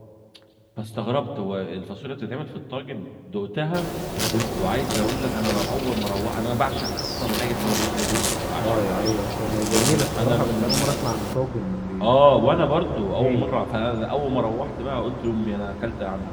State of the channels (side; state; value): both; identical; correlation 1.00